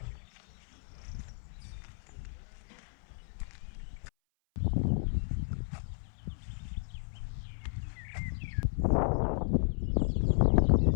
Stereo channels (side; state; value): right; silent; 55 dB below the other